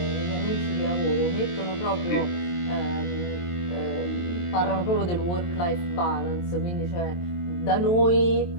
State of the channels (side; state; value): right; late; 23 ms